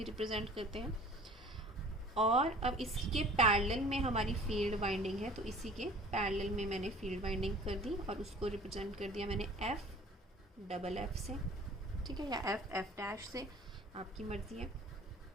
रिप्रेजेंट करते हैं। और अब इसके पैरेलल में हमारी फील्ड वाइंडिंग है, तो इसी के पैरेलल में मैंने फील्ड वाइंडिंग कर दी और उसको रिप्रेजेंट कर दिया मैंने एफ, डबल एफ से, ठीक है, या एफ डैश से, आपकी मर्जी है।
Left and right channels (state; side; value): normal; both; correlation 0.48